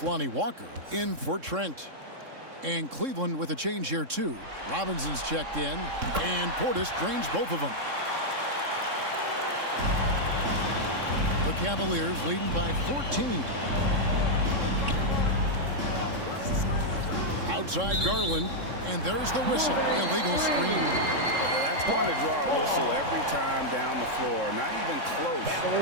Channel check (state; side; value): late; left; 3.7 ms